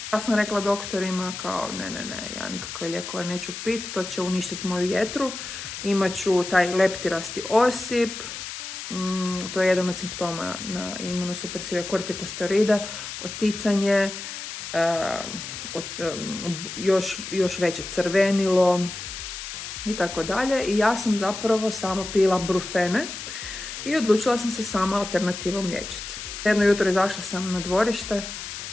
Ja sam rekla doktorima kao ne, ja nikakve lijekove neću piti, to će uništiti moju jetru, imat ću taj leptirasti osip, to je jedan od simptoma na imunosupresive kortikosteroide, oticanje, još veće crvenilo i tako dalje. I ja sam zapravo samo pila brufene i odlučila sam se sama alternativom liječiti. Jedno jutro izašla sam na dvorište,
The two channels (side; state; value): left; noise; hiss, 8 dB below the sound